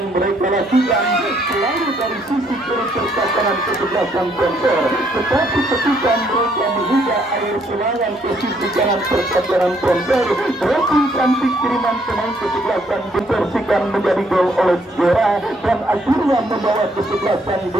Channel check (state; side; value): normal; both; correlation 0.69